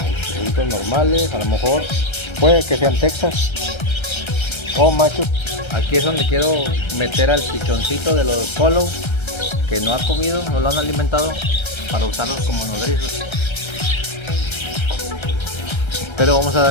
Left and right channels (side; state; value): right; late; 1.3 ms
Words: ojitos normales, a lo mejor puede que sean Texas o machos. Aquí es donde quiero meter al pichoncito de los follow que no ha comido, no lo han alimentado, para usarlos como nodrizos. Pero vamos a